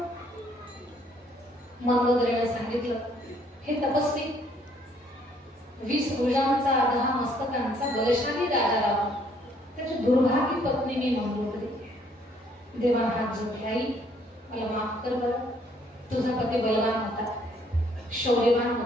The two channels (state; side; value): normal; both; correlation 0.65